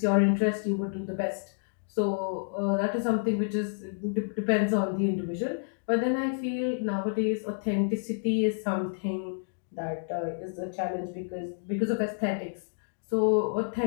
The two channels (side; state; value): right; silent; digital silence